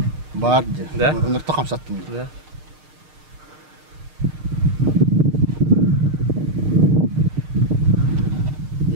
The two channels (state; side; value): late; left; 6.6 ms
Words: Бар. Да? Нұрты қамсаттым. Да.